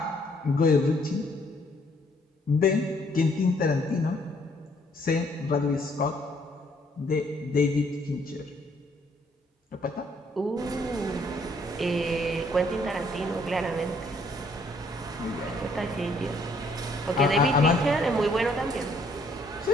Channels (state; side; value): normal; both; correlation 0.65